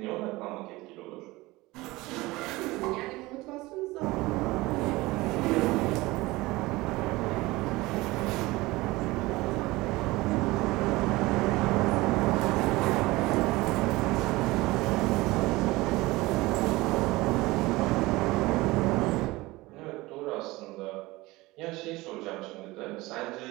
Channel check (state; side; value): quieter; left; 20.6 dB